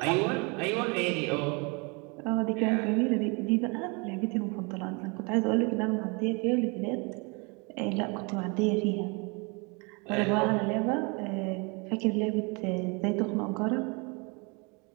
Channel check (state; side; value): quieter; left; 30.7 dB